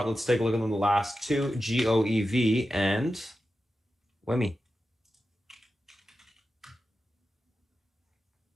Let's take a look at the last two, GOEV and WIMI.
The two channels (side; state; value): both; normal; correlation 0.91